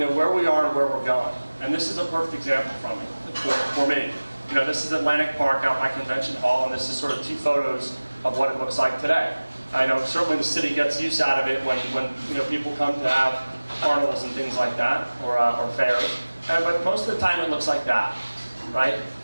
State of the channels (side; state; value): both; inverted; correlation -1.00